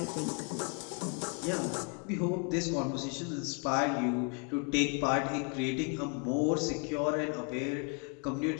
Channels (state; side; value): quieter; right; 35.4 dB